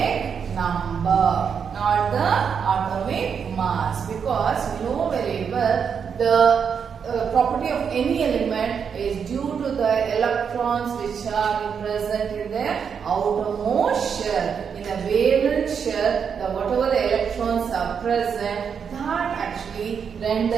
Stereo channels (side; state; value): left; quieter; 6.9 dB